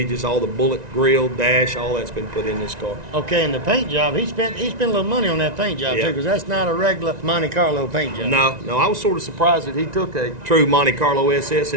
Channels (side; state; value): left; late; 1.9 ms